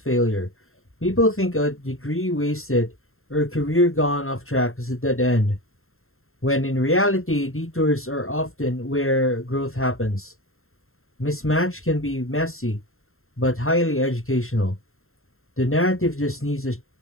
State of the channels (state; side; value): late; right; 0.61 ms